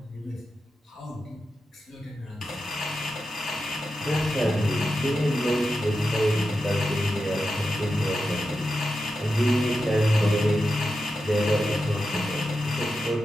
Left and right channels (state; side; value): normal; both; correlation 0.90